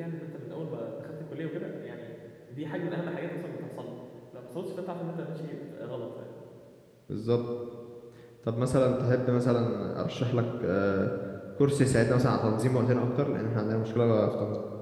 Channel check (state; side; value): identical; both; correlation 1.00